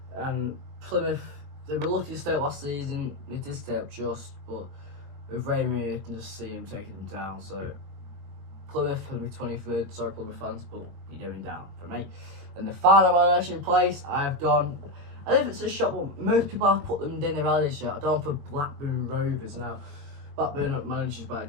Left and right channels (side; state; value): left; late; 21 ms